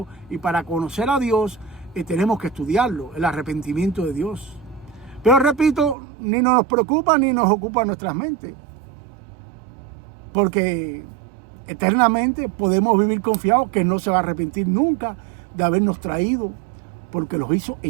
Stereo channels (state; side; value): drops out; left; at 6.0 s